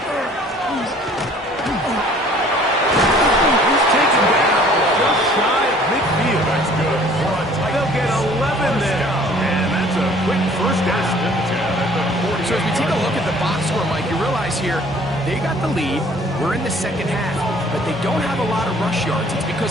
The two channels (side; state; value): both; normal; correlation 0.54